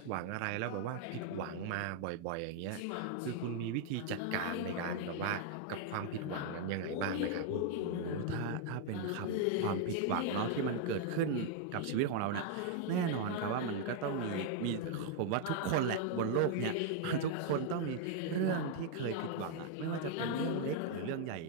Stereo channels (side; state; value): both; different; correlation 0.00